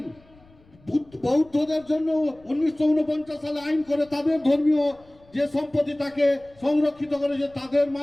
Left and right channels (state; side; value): noise; left; rumble, 29 dB below the sound